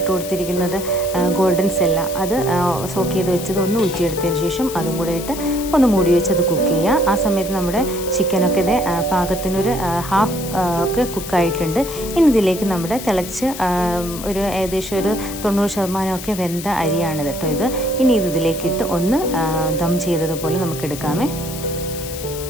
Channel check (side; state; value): left; noise; hiss, 11 dB below the sound